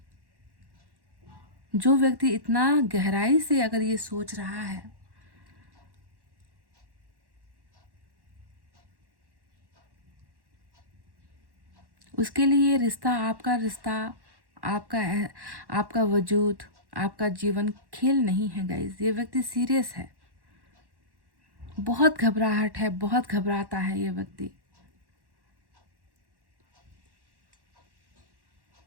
जो व्यक्ति इतना गहराई से अगर ये सोच रहा है, उसके लिए ये रिश्ता, आपका वजूद, आपका जीवन खेल नहीं है गाइज। ये व्यक्ति सीरियस है, बहुत घबराहट है, बहुत घबराता है ये व्यक्ति।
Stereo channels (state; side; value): late; left; 1.1 ms